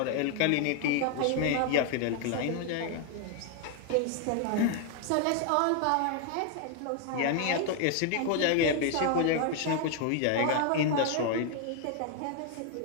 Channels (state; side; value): different; both; correlation 0.00